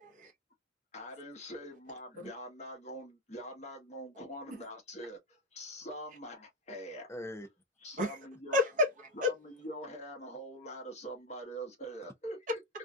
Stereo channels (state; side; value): normal; both; correlation 0.08